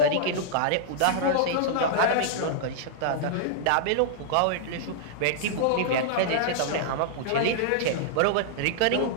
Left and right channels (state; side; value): different; both; correlation -0.01